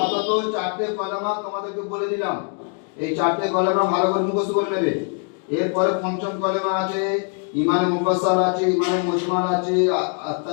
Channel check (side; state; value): right; quieter; 39.1 dB